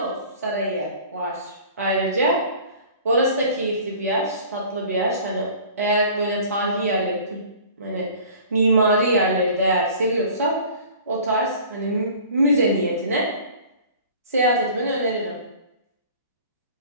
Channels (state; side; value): inverted; both; correlation -0.46